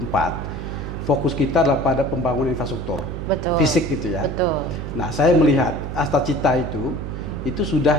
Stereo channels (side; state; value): right; noise; hum, 6 dB below the sound